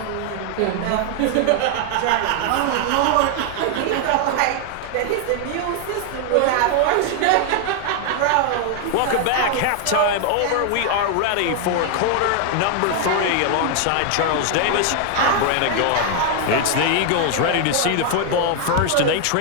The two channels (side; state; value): both; different; correlation 0.00